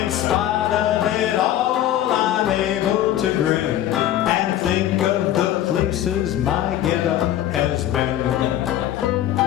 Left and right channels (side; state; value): right; quieter; 12.3 dB